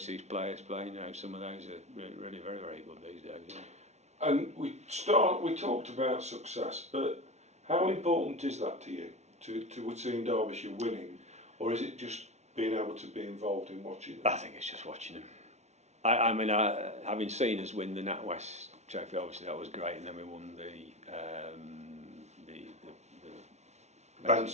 players playing. Some of those are really very, very good these days. Yeah. And we talked about success, but how important is that to you, to seeing Derbyshire winning, or is it just being able to be involved in watching them? I think it's just watching them. I mean, having seen us win the NatWest Trophy, obviously that was great, and then we won the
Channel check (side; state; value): left; late; 0.32 ms